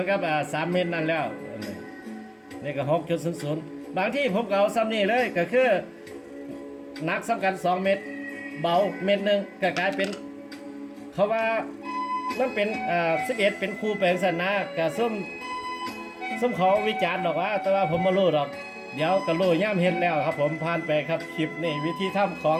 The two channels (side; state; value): both; identical; correlation 1.00